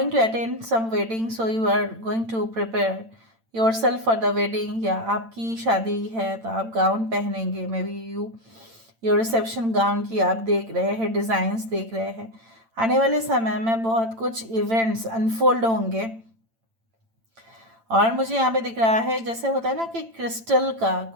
to attend some wedding, so you are going to prepare yourself for the wedding. या आपकी शादी है तो आप गाउन पहनेंगे, may be your reception gown की आप देख रहे हैं, डिज़ाइंस देख रहे हैं. आने वाले समय में बहुत कुछ इवेंट्स अनफोल्ड होंगे. और मुझे यहाँ पे दिख रहा है जैसे होता है ना कि क्रिस्टल का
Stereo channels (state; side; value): late; left; 8.9 ms